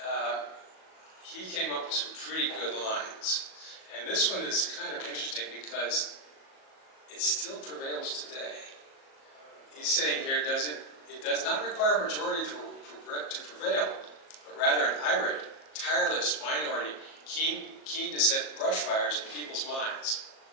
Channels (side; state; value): right; late; 37 ms